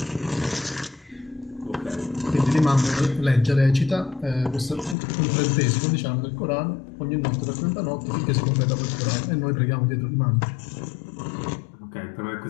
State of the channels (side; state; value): right; drops out; at 5.0 s